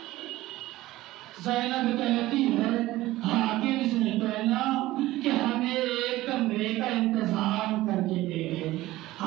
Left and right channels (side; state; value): left; quieter; 17.0 dB